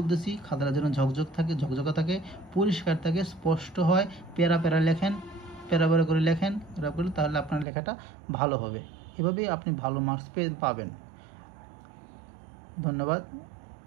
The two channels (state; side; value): drops out; left; at 7.7 s